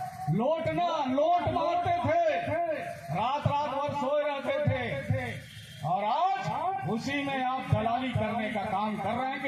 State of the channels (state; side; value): identical; both; correlation 1.00